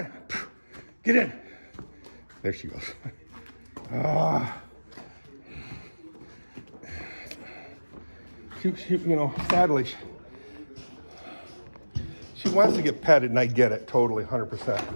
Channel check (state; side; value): inverted; both; correlation -1.00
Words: get in. There she goes. She, you know, sadly, she wants to get petted, and I get it totally,